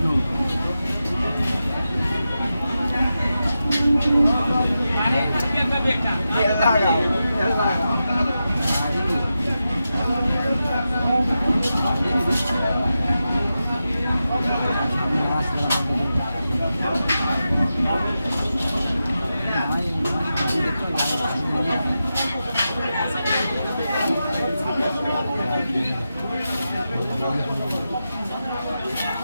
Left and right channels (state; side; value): inverted; both; correlation -0.91